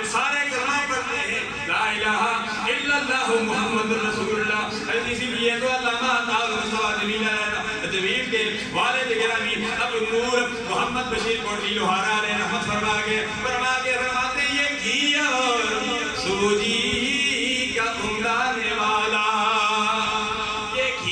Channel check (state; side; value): identical; both; correlation 1.00